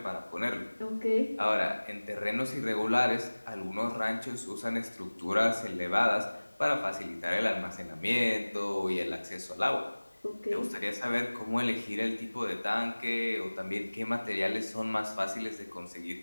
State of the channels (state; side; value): inverted; both; correlation -1.00